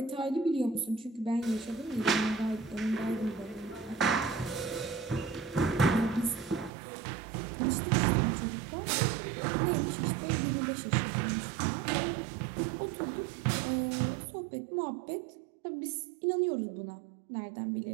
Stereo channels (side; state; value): left; drops out; at 6.7 s